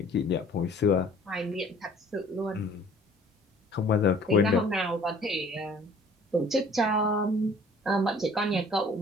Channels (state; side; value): normal; both; correlation 0.53